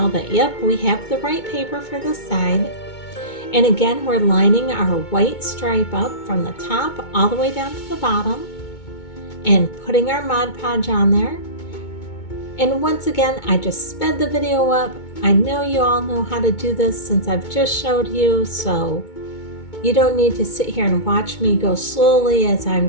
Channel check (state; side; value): late; right; 2.2 ms